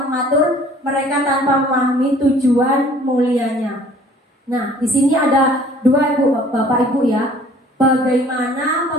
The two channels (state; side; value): normal; both; correlation 0.53